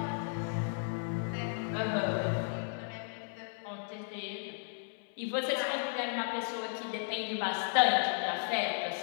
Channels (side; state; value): right; silent; 55 dB below the other